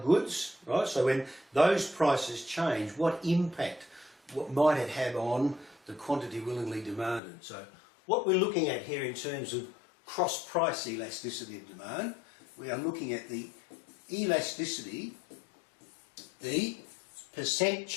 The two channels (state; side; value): drops out; right; at 7.2 s